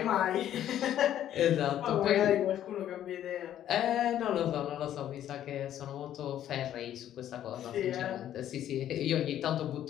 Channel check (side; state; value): right; quieter; 11.3 dB